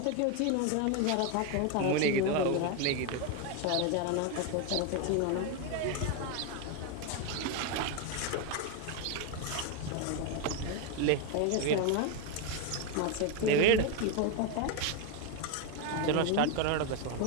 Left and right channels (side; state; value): both; different; correlation 0.02